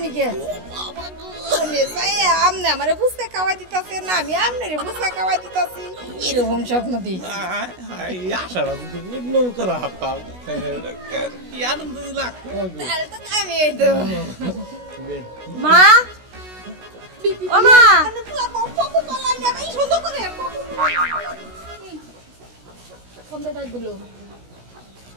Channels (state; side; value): late; left; 16 ms